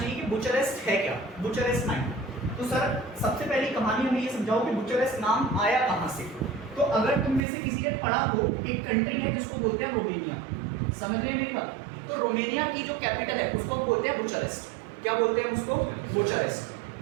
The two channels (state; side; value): drops out; left; at 7.4 s